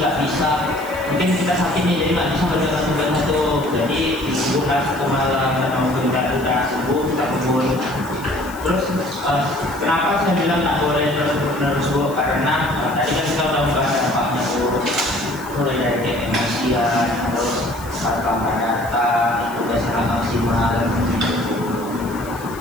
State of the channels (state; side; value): noise; left; hiss, 19 dB below the sound